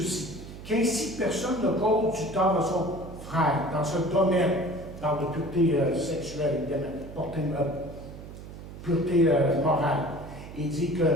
qu'ainsi personne ne cause du tort à son frère dans ce domaine, dans la pureté sexuelle, évidemment, pureté morale. Il dit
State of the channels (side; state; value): right; noise; hum, 13 dB below the sound